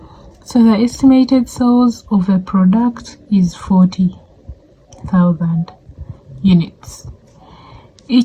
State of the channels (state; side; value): identical; both; correlation 1.00